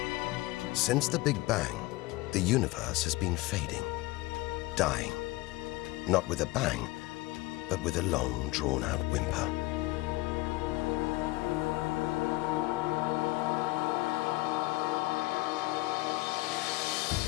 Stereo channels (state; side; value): quieter; right; 20.6 dB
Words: Since the Big Bang, the universe has been fading, dying, not with a bang, but with a long, drawn-out whimper.